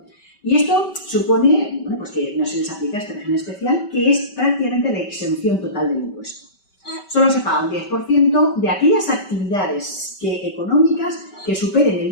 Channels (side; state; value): right; late; 5.2 ms